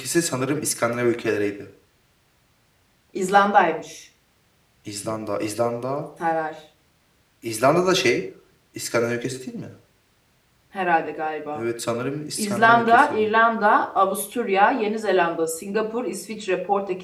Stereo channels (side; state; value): both; identical; correlation 1.00